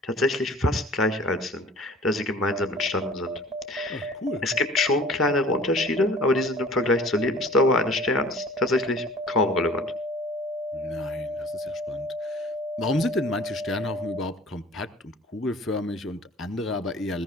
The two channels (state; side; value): normal; both; correlation 0.47